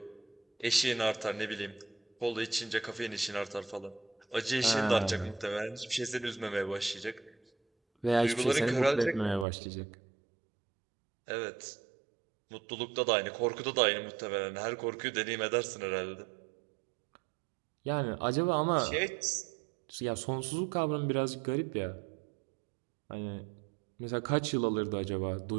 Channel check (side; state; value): left; drops out; at 9.5 s